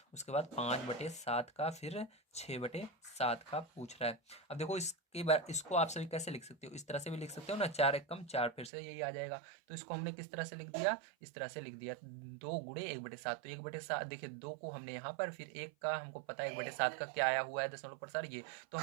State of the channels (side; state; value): left; drops out; at 8.7 s